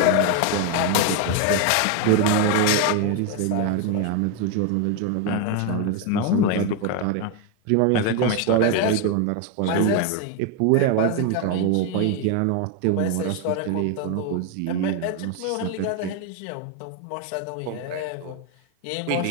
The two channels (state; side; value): different; both; correlation 0.01